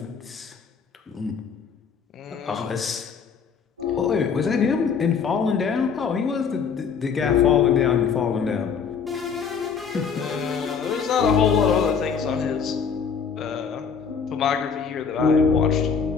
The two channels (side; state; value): right; quieter; 6.2 dB